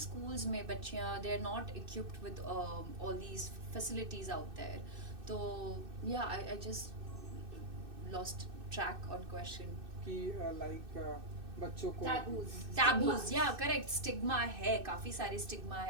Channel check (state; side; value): late; left; 2.6 ms